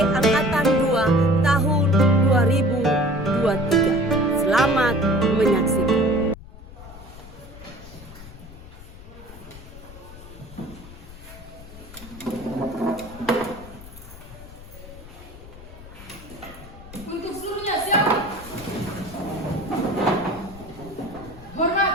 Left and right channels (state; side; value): noise; left; rumble, 17 dB below the sound